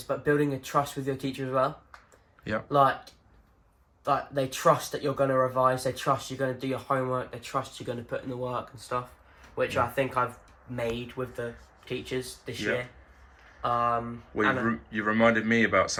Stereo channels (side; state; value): both; identical; correlation 1.00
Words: but building a trust with your teacher as well. Yeah. Like they trust that you're going to revise. They trust you're going to do your homework. They trust you're going to put in the work and stuff, which I think I've made with the teachers this Yeah. year. Well, you reminded me about